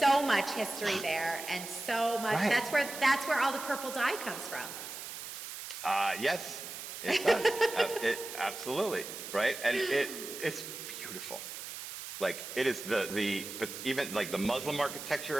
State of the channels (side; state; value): right; noise; hiss, 9 dB below the sound